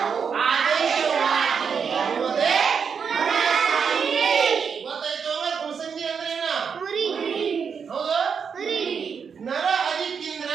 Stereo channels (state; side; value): quieter; left; 6.4 dB